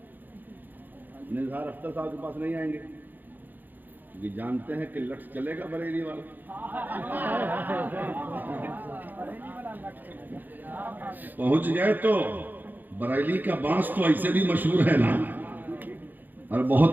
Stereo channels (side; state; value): left; late; 0.087 ms